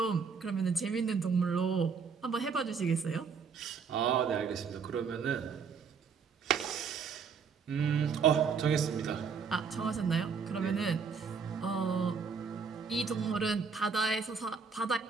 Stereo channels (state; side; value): quieter; left; 5.8 dB